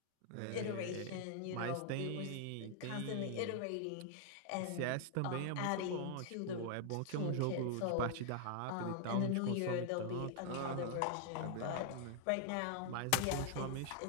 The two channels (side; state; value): both; different; correlation 0.00